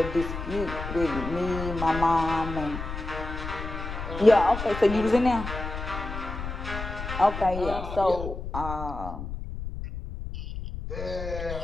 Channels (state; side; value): noise; left; rumble, 7 dB below the sound